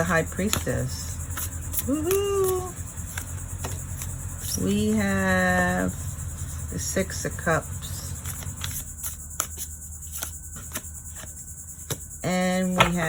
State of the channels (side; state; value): both; identical; correlation 1.00